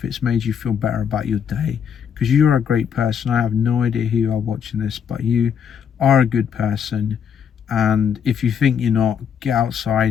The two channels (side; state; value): right; quieter; 7.8 dB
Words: it's made you feel better about your day, because you're a great person. I have no idea who you are watching this, but you are a good person. And if you think you're not, get